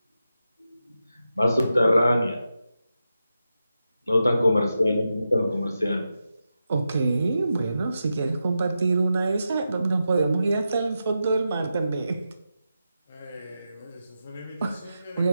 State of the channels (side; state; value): both; inverted; correlation -0.89